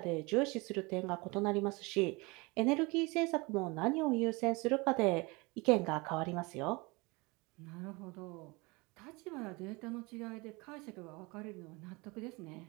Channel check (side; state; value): left; quieter; 26.0 dB